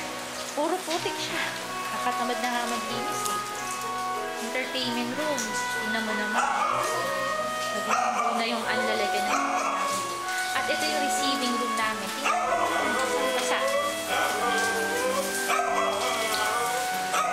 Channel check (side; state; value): both; identical; correlation 1.00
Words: Puro putik siya. Nakatamad na nga maglinis eh. Entertainment room. Tingnan mo naman. Naging na yung anlalagan na. At ito yung receiving room namin. Tingnan mo. Basa.